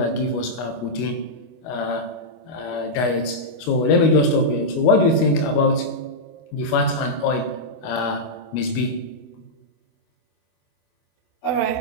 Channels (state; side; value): late; right; 25 ms